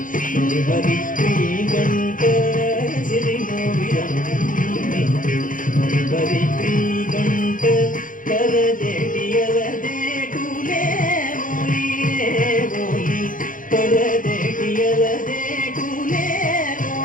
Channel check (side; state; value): right; late; 0.39 ms